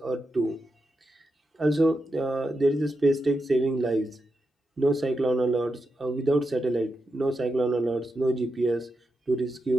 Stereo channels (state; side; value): normal; both; correlation 0.87